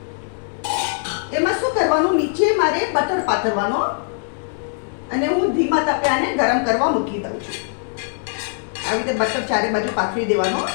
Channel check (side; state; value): right; silent; 65 dB below the other